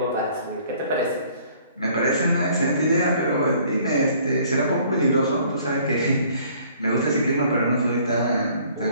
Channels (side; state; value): both; inverted; correlation -0.58